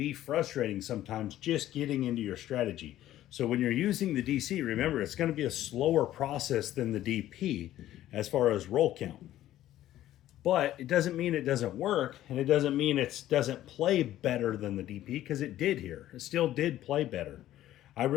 frustrating sometimes just getting into your strategy. So when you're using the DC, remember, it's going to be a slower process than the DP as far as roll count. But it doesn't mean it doesn't work, and it doesn't mean it doesn't play better than the DP, because it did here. It still did play better. I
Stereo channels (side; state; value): right; quieter; 13.4 dB